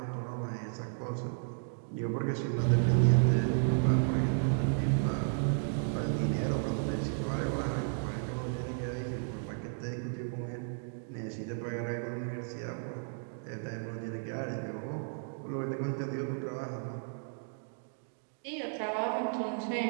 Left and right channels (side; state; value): left; silent; digital silence